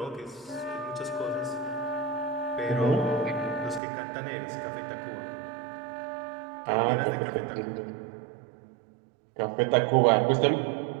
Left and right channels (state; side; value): drops out; left; at 3.8 s